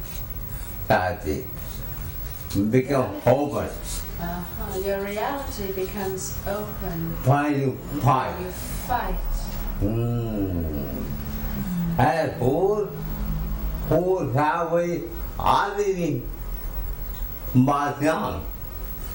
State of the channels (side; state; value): both; identical; correlation 1.00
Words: tragedy become open. Your reality becomes open. Why you fight? You fight. And who have already but wrong.